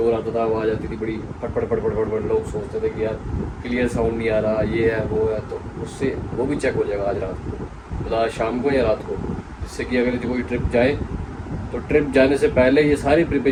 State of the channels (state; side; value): identical; both; correlation 1.00